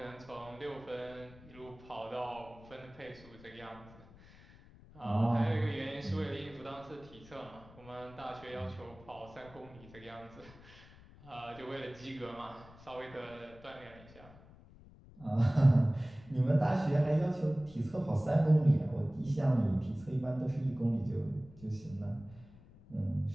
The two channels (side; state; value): left; noise; rumble, 21 dB below the sound